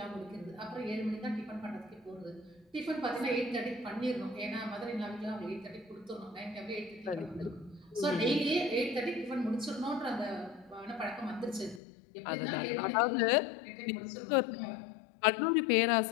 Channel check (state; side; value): drops out; right; at 11.8 s